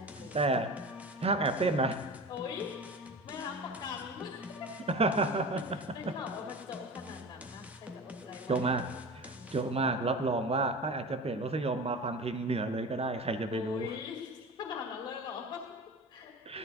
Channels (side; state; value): both; normal; correlation 0.33